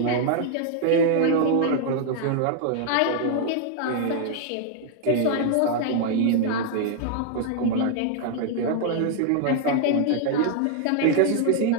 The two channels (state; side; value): different; both; correlation 0.00